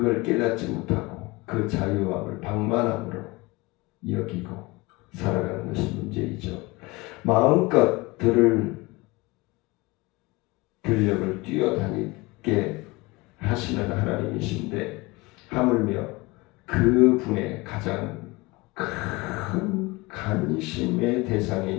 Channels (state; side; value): quieter; right; 23.2 dB